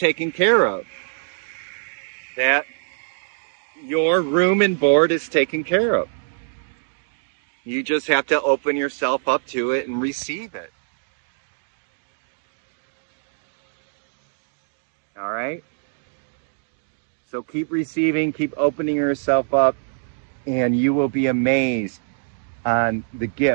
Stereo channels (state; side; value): silent; left; digital silence